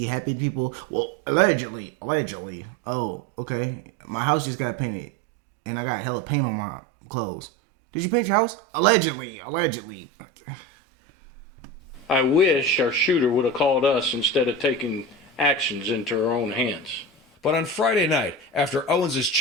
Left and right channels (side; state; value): both; normal; correlation 0.27